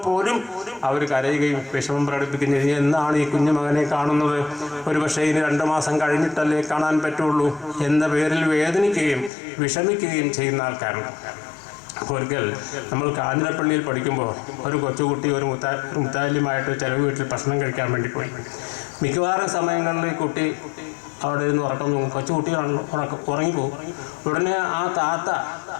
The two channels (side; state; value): right; drops out; at 9.3 s